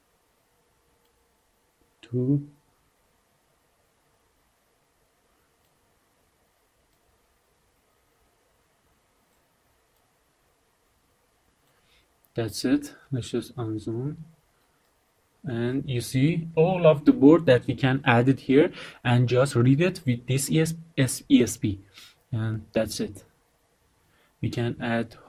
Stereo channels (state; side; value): identical; both; correlation 1.00